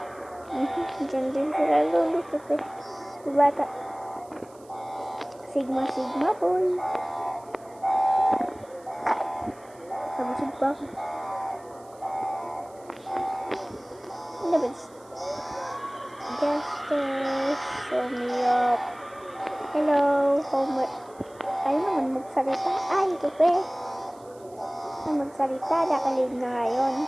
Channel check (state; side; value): noise; right; hiss, 28 dB below the sound